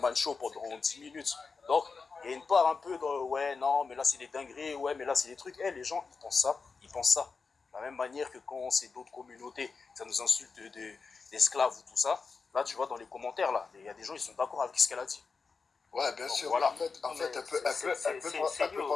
show pendant 10 minutes. Donc, il y a une part un peu de ouais, non, mais là, c'est des dingueries, ouais, mais là, c'est des trucs. Les gens, ils pensent ça, ils pensent ça. De la même manière que quand c'est d'autres communautés, ça nous insulte d'esclaves ou tout ça. Là, tu vois, dans les commentaires, là, il y a des gens, ils sont d'accord avec ce qu'elle a dit. Ouais, bien Donc, sûr. voilà. En fait, elle peut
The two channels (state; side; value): quieter; right; 4.8 dB